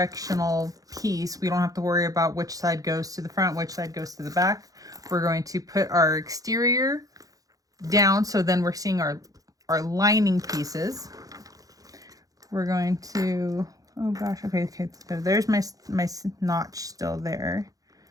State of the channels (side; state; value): left; late; 0.17 ms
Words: piece, we don't have to worry about which side goes to the front, which side goes to the back. We're going to put our exterior down, so then we're seeing our lining pieces. We're going to, oh gosh, okay, so there's my notch still there.